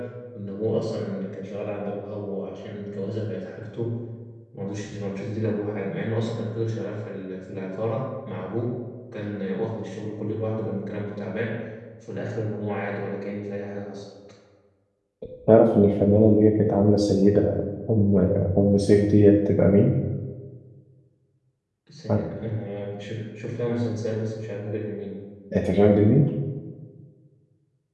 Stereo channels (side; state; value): both; identical; correlation 1.00